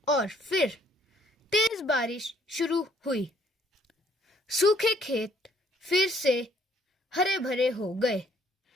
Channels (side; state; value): both; normal; correlation 0.64